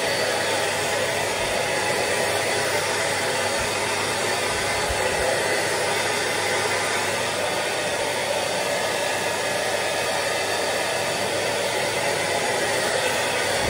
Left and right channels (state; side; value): identical; both; correlation 1.00